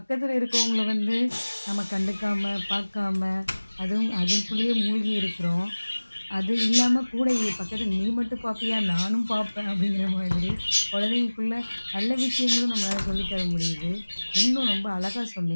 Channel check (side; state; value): both; inverted; correlation -1.00